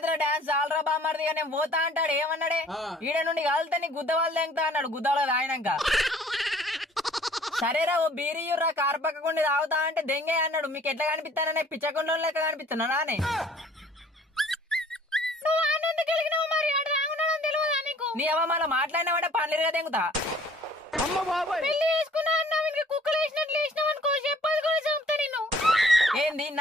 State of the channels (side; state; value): both; normal; correlation 0.55